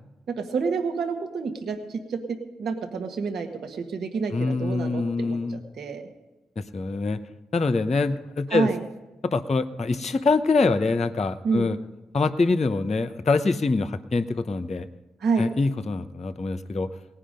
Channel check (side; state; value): both; normal; correlation 0.84